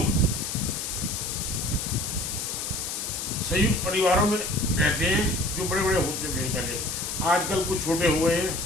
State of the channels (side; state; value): left; noise; hiss, 4 dB below the sound